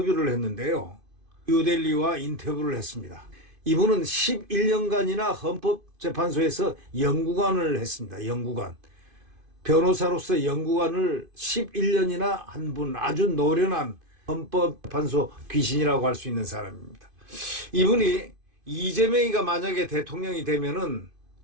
했는데요. 뉴델리와 인터뷰를 했습니다. 이분은 11년간이나 헌법재판소에서 연구관을 했습니다. 연구관. 변호사로서 연구관을 11년이나 한 분, 아주 노련한 헌법재판소 귀신이라고 할 수 있는 사람입니다. 이분이 이재명이가 만약에 대통령이 되면은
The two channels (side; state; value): left; late; 2.5 ms